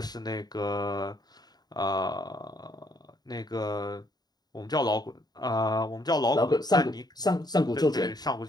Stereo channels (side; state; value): right; late; 0.20 ms